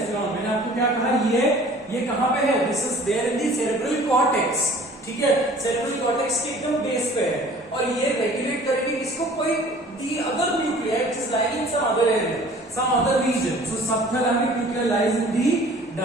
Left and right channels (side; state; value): both; normal; correlation 0.49